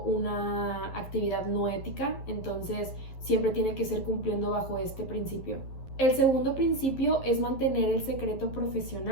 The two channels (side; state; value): right; late; 11 ms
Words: una actividad no ética. Entonces siempre tiene que ser cumpliendo bajo este principio. El segundo principio es mantener el secreto